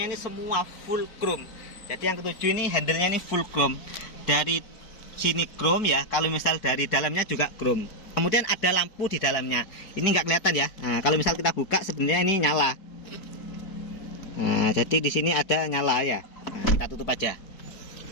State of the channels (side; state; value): right; late; 4.7 ms